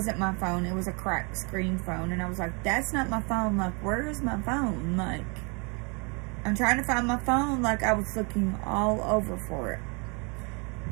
my phone. It was a cracked screen phone. And I was like, that's not my phone. Where is my phone? I'm trying to find my phone. I was looking all over for it.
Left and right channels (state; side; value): quieter; left; 32.7 dB